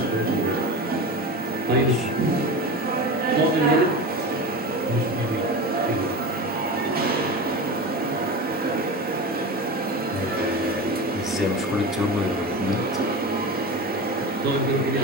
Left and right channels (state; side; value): normal; both; correlation 0.27